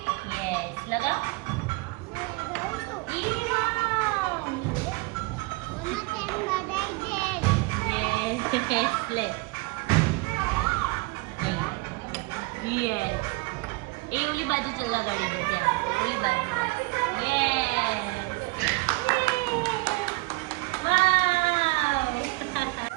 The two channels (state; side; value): quieter; left; 24.0 dB